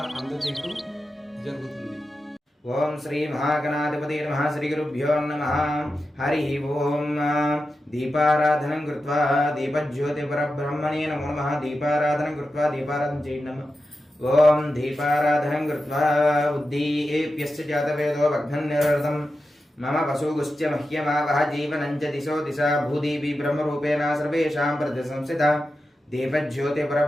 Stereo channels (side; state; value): both; normal; correlation 0.91